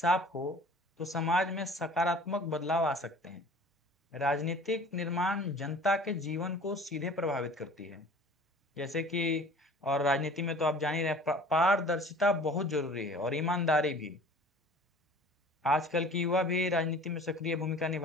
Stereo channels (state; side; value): normal; both; correlation 0.46